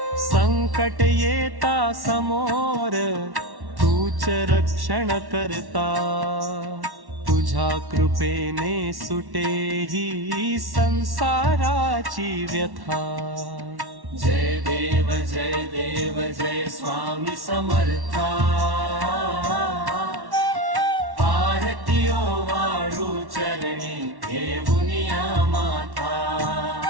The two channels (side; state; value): left; late; 1.1 ms